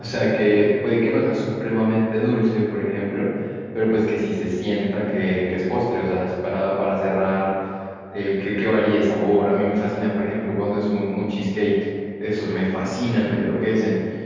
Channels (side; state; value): both; identical; correlation 1.00